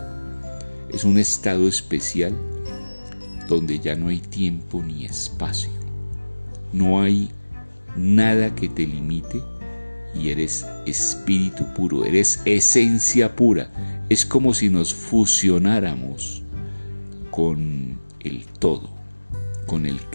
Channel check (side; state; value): both; inverted; correlation -1.00